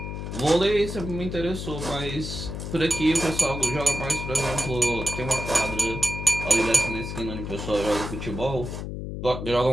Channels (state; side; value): noise; left; hum, 6 dB below the sound